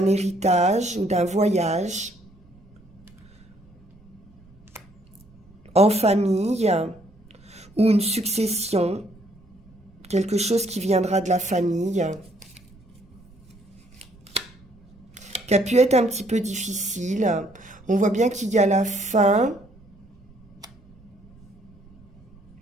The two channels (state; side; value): noise; right; rumble, 26 dB below the sound